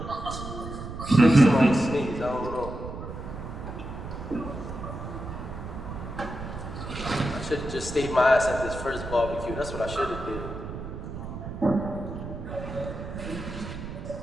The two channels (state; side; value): noise; right; rumble, 8 dB below the sound